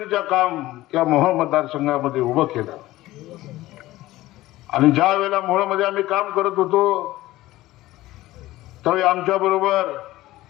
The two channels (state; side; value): quieter; right; 16.9 dB